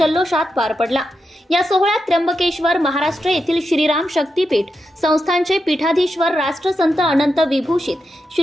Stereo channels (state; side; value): normal; both; correlation 0.87